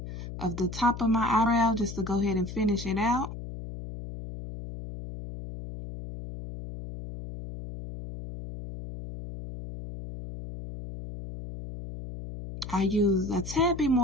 of the top of my eyebrow just to go ahead and finish it out. I use a tad bit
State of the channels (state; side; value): noise; left; hum, 10 dB below the sound